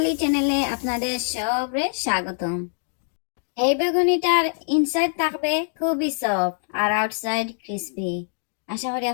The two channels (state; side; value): silent; right; digital silence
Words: চ্যানেলে আপনাদের সবরে স্বাগতম। এই বেগুনিটার ইনসাইড থাকবে খুবই সফট আর আউটসাইড ক্রিসপি। আশা করি